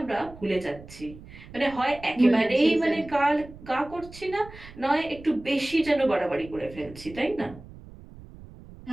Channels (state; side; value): noise; right; rumble, 18 dB below the sound